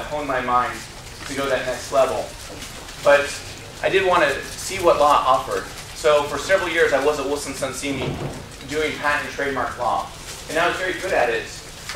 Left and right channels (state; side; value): identical; both; correlation 1.00